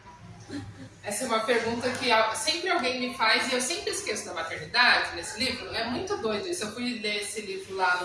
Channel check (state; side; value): identical; both; correlation 1.00